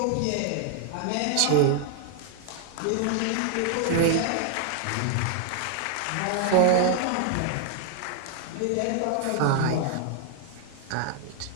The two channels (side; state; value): both; different; correlation 0.00